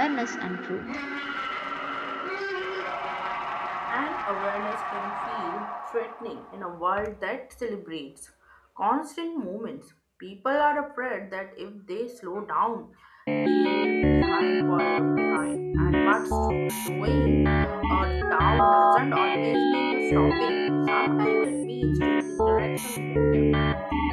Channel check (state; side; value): identical; both; correlation 1.00